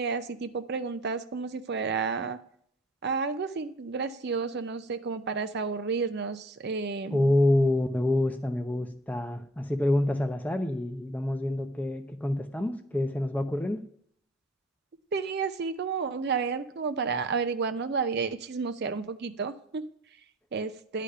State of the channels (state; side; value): normal; both; correlation 0.54